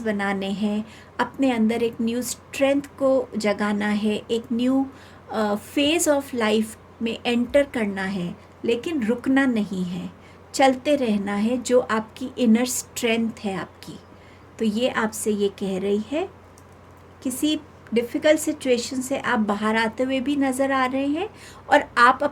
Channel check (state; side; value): identical; both; correlation 1.00